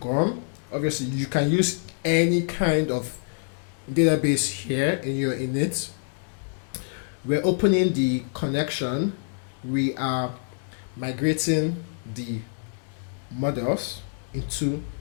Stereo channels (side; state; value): right; silent; digital silence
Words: Gorm. Obviously, you can use any kind of database here in your init. We're opening the connection. We are migrating the models into